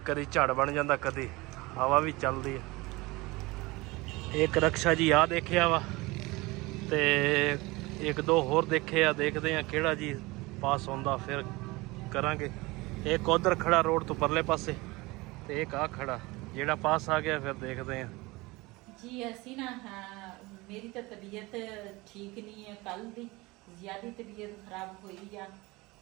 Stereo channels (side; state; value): left; quieter; 22.5 dB